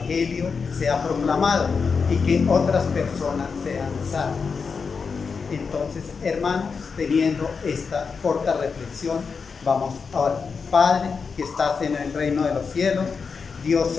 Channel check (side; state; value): right; quieter; 5.3 dB